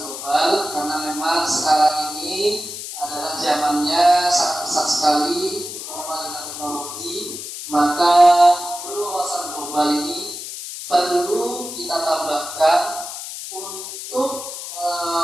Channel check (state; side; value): noise; left; hiss, 9 dB below the sound